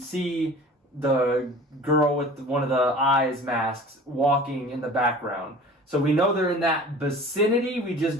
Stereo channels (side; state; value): both; normal; correlation 0.43